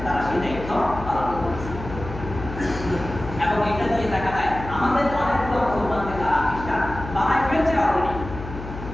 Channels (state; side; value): noise; left; hum, 10 dB below the sound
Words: তারা সেই দায়িত্ব পালন করছে। এবং এটা দিয়ে দেখা যায় আমাদের অনেকগুলো মুসলমানকে তারা খ্রিস্টান বানায় ফেলছে অলরেডি,